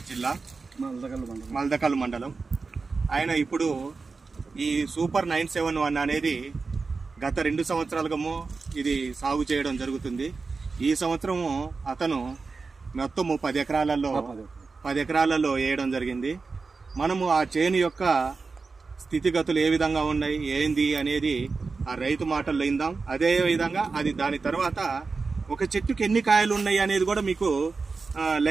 జిల్లా, మల్దకల్ మండలం. ఆయన ఇప్పుడు ఈ సూపర్ 971 అనేది గత 2 సంవత్సరాలుగా ఇది సాగు చేయడం జరుగుతుంది. ఈ సంవత్సరము అతను మొత్తం 10 ఎకరాలలో వేయడం జరిగింది. మనము ఆ చేను యొక్క స్థితిగతులు ఏ విధంగా ఉన్నాయి, ఏంది అనేది ఆ రైతు మాటల్లో ఇందాం. అదే విధంగా దాని తర్వాత ఒక చెట్టుకి ఎన్ని కాయలు ఉన్నాయి అనేది కూడా మీకు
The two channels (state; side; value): quieter; left; 4.3 dB